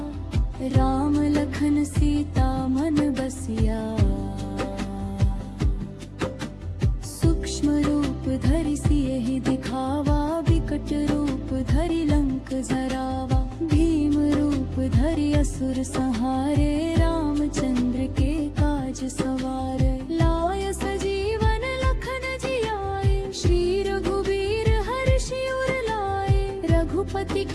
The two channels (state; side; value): identical; both; correlation 1.00